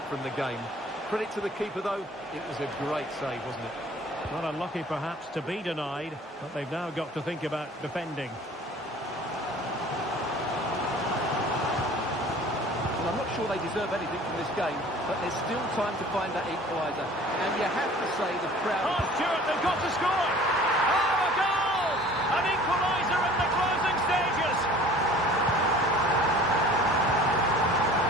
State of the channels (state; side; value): normal; both; correlation 0.47